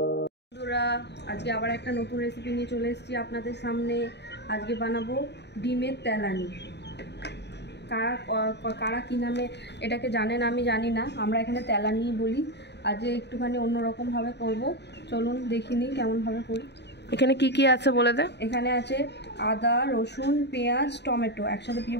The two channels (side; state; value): right; late; 0.50 ms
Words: আবার একটা নতুন রেসিপি নিয়ে চলে এসেছি আপনাদের সামনে। আজকে বানাবো ডিমের তেলানি। কারা কী নামে এটাকে জানেন আমি জানি না, আমরা এখানে তেলানি বলি। আজকে একটুখানি অন্যরকমভাবে করব, চলুন দেখিনি কেমনভাবে করি। এখানে কি কি আছে বলে দে। এখানে আছে আদা, রসুন, পেঁয়াজ, টমেটো একসাথে